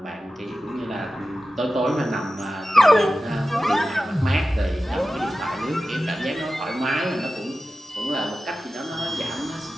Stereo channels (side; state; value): both; normal; correlation 0.94